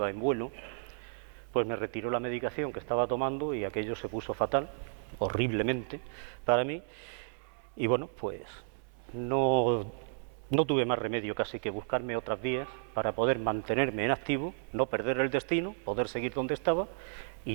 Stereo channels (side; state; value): left; silent; 56 dB below the other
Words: en vuelo, pues me retiró la medicación que estaba tomando y aquello se puso fatal, horriblemente para mí, y bueno, pues no tuve más remedio casi que buscarme otras vías para poder mantenerme en activo, no perder el destino, poder seguir donde estaba